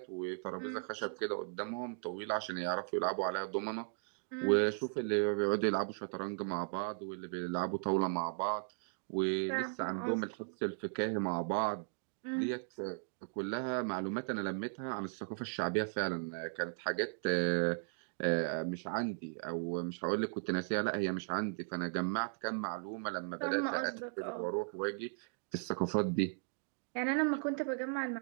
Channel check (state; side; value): silent; left; digital silence